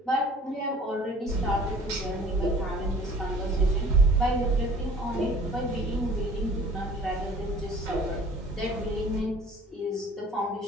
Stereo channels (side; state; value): both; normal; correlation 0.49